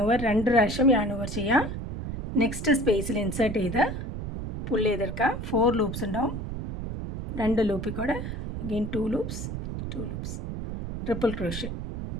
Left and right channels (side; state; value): right; noise; rumble, 6 dB below the sound